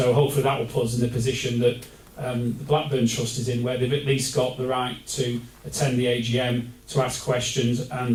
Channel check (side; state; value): both; identical; correlation 1.00